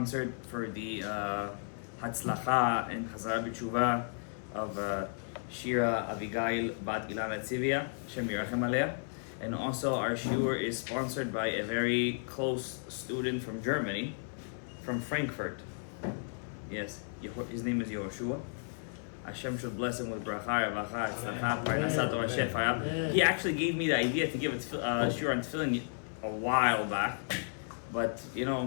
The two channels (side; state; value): right; silent; 55 dB below the other